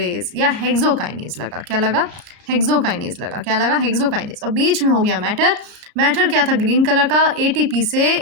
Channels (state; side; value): late; left; 33 ms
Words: या हेक्सोकाइनेज लगा। क्या लगा? हेक्सोकाइनेज लगा। क्या लगा? हेक्सोकाइनेज। और बीच में हो गया मैटर। मैटर क्या था? ग्रीन कलर का, एटीपी से